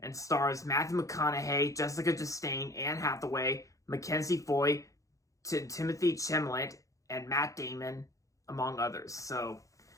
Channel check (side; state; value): right; late; 0.16 ms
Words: and stars Matthew McConaughey, Jessica Chastain, Anne Hathaway, Mackenzie Foy, Timothy Chalamet, and Matt Damon, among others. So